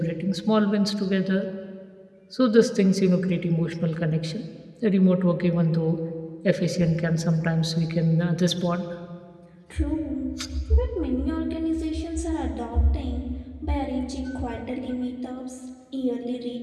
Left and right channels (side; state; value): both; identical; correlation 1.00